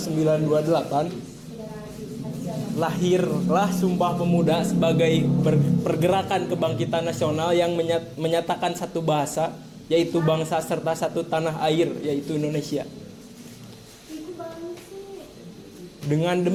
lahirlah Sumpah Pemuda sebagai pergerakan kebangkitan nasional yang menyatakan satu bahasa, yaitu bangsa, serta satu tanah air, yaitu Indonesia. Dengan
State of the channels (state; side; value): identical; both; correlation 1.00